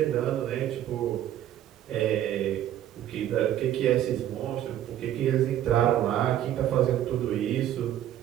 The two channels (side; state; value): left; quieter; 11.7 dB